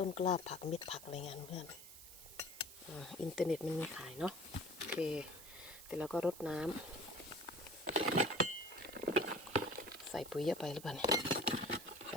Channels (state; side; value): noise; right; hiss, 15 dB below the sound